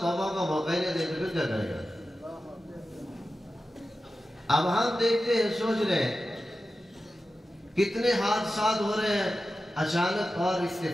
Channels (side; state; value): both; normal; correlation 0.93